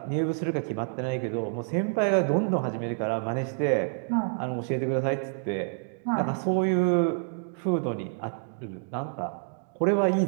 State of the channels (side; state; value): left; silent; 59 dB below the other